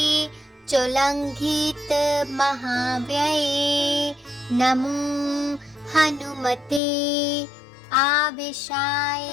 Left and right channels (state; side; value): drops out; right; at 6.8 s